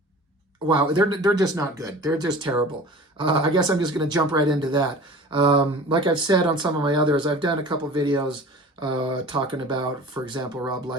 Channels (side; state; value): both; normal; correlation 0.40